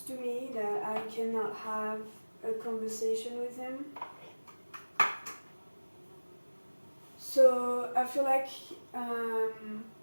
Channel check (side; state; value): both; inverted; correlation -1.00